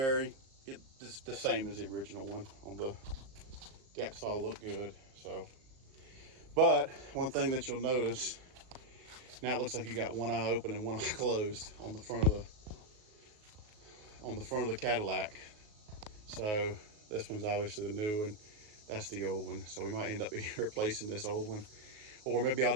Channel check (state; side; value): late; left; 38 ms